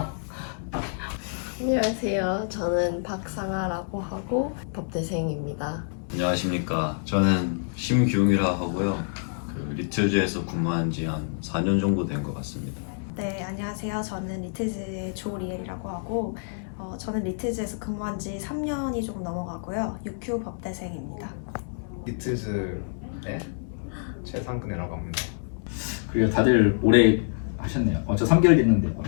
안녕하세요. 저는 박상아라고 하고 법대생입니다. 안녕하십니까. 저는 심규웅이라 하고요. 리틀즈에서 근무한 지 한 4년 정도 된 것 같습니다. 네, 안녕하세요. 저는 리틀즈의 조리엘이라고 하고 저는 리틀즈에서 근무한 지 3년이 조금 넘어가고요. UQ 법대생입니다. 리틀즈의 최상근이라고 합니다. 그리고 다들 오래 하셨네요. 저 3개월 됐는데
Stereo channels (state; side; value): silent; right; 60 dB below the other